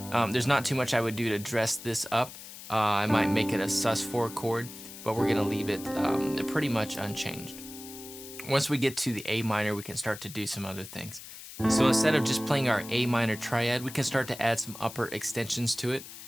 there's not too much I would do to dress this up. I might make it a sus4 chord, but we're gonna leave it pretty much unchanged. Once we get to the A minor, we can start to do some other things. So instead of just playing our A minor triad, we can start to add some upper extensions to it,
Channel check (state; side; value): noise; left; hiss, 14 dB below the sound